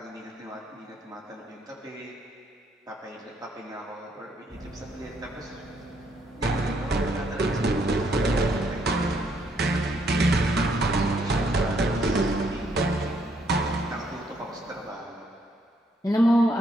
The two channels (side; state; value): both; normal; correlation 0.72